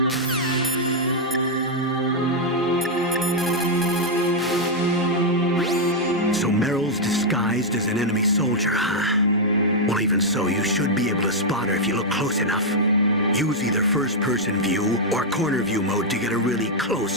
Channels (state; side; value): normal; both; correlation -0.03